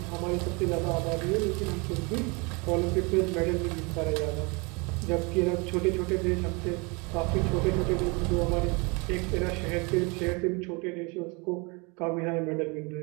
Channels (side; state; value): left; quieter; 29.5 dB